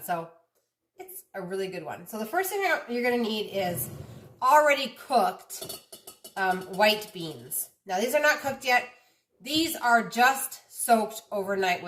so it's a really good one. So the first thing you're going to need is already cooked white beans. Now these are not cooked yet. These are just soaked overnight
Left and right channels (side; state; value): both; identical; correlation 1.00